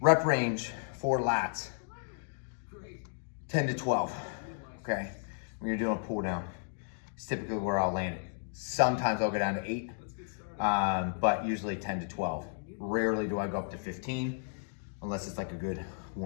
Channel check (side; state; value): right; silent; digital silence